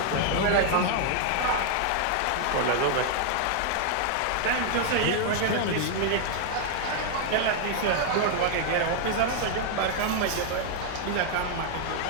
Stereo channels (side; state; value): both; different; correlation 0.00